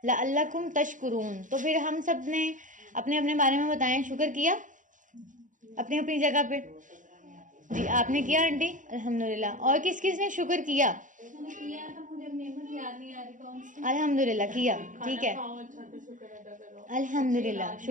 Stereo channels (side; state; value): left; late; 0.37 ms